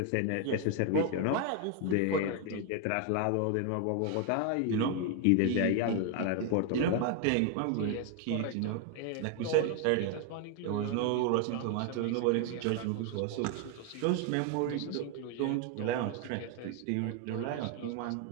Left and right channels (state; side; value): different; both; correlation 0.00